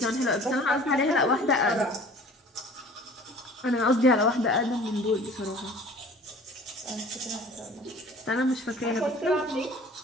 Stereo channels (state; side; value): normal; both; correlation 0.47